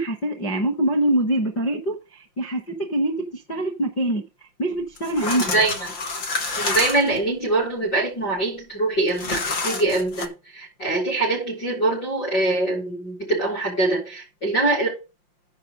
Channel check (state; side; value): late; right; 5.7 ms